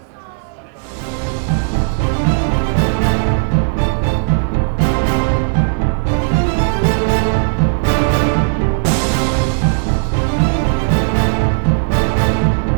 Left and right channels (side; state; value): left; silent; 68 dB below the other